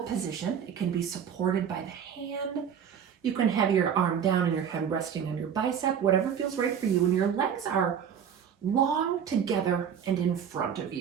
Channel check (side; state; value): left; quieter; 8.0 dB